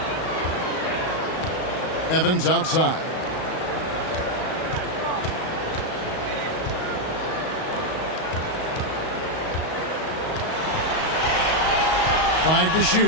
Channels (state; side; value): late; right; 38 ms